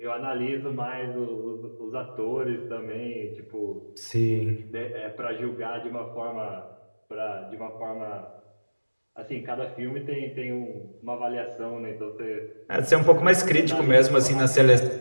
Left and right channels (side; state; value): both; inverted; correlation -1.00